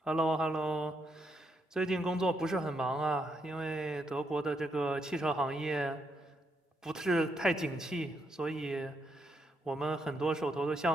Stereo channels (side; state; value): both; normal; correlation 0.78